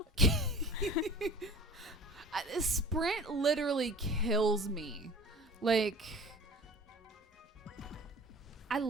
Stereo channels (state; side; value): normal; both; correlation 0.40